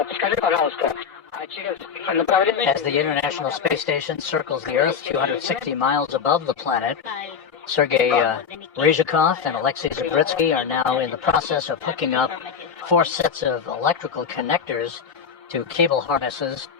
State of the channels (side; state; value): right; quieter; 6.6 dB